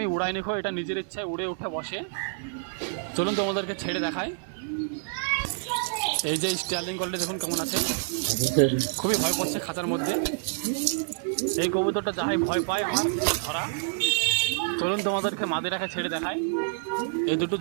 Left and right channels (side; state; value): left; silent; 60 dB below the other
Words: উড়াই নিখো, এটা নিজের ইচ্ছায় উড়ে উঠে বসে। চলুন তোমাদেরকে ছেড়ে দেখাই। এই যে স্টাইলিং কোয়ালিটি দেখুন কেমন আছে। খুবই ভয় পাচ্ছে খাঁচার মধ্যে। এই কবুতরটা যাহাই ভয় পায় আমার ধরা। চলুন তোমাদেরকে মাদিরাকে ছেড়ে দেখাই। এই দুটো